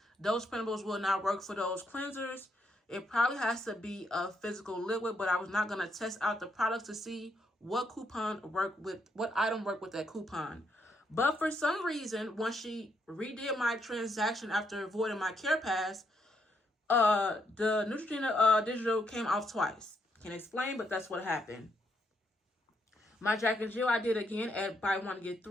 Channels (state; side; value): normal; both; correlation 0.76